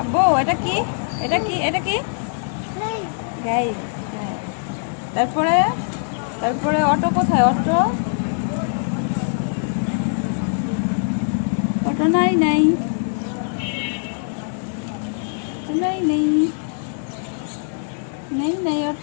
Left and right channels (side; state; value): right; silent; digital silence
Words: আব্বু, এটা কি? এটা কি? এটা কি? যাই। হ্যাঁ। তারপরে, তারপরে অটো কোথায়? অটো, অটো নাই, নাই নাই, নেই নেই, নেই